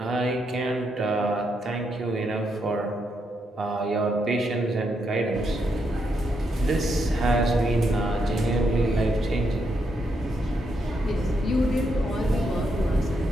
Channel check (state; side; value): normal; both; correlation 0.79